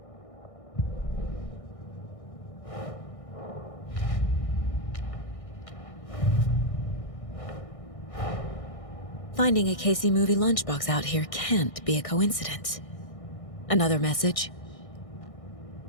Finding a Casey movie lunchbox out here can't be a coincidence. Another message?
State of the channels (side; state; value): right; late; 1.6 ms